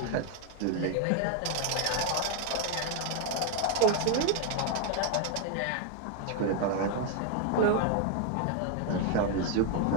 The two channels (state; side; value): different; both; correlation 0.01